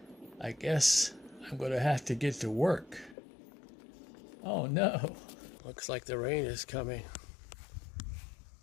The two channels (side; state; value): right; drops out; at 3.2 s